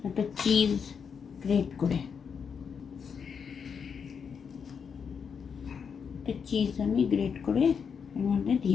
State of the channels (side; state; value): right; quieter; 6.5 dB